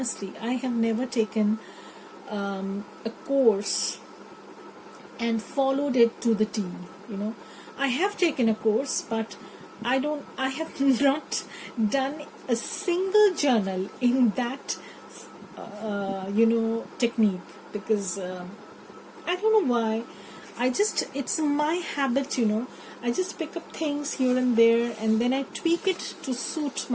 I have never taken a course and followed it to the T. I have taken a course, but I have not done a single journal in that technique, because I don't know why. It's my habit, I just pick up things here and there, and then I tweak it to suit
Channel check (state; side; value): identical; both; correlation 1.00